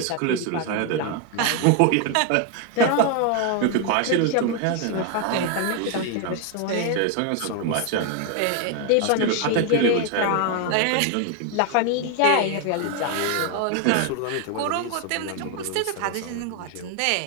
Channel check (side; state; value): both; different; correlation 0.01